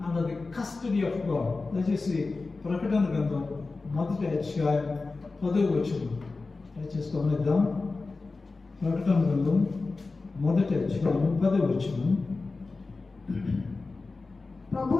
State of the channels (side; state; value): right; quieter; 3.8 dB